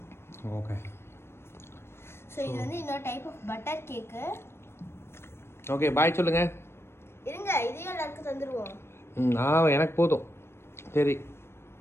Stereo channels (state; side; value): late; right; 0.12 ms